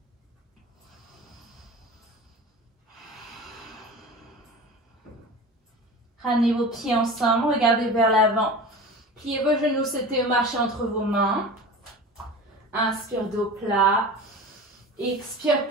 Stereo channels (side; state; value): both; normal; correlation 0.34